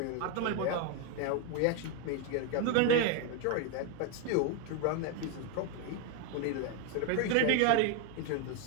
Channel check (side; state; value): both; different; correlation 0.01